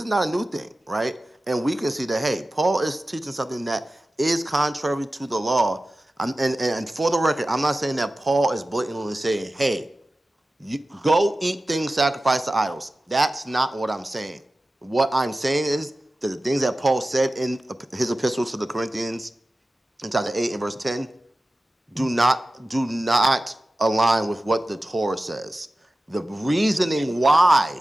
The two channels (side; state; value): both; normal; correlation 0.95